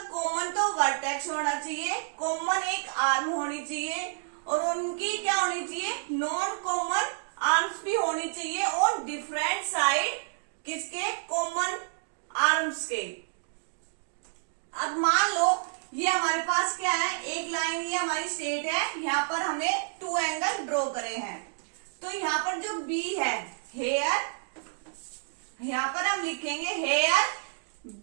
कॉमन तो वर्टेक्स होना चाहिए, कॉमन एक आर्म होनी चाहिए और उनकी क्या होनी चाहिए, नॉन कॉमन आर्म्स भी होनी चाहिए और डिफरेंट साइड किसके, कॉमन आर्म्स के। अब मान लो ये हमारे पास क्या है, एक लाइन ये हमारी स्ट्रेट है, यहाँ पर हमने टू एंगल ड्रॉ करे हैं। तो यहाँ पर जो बी है, हेयर, यहाँ पर हम लिखेंगे here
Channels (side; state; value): left; silent; digital silence